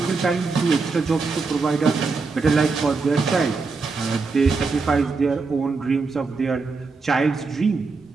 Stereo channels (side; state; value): left; quieter; 4.3 dB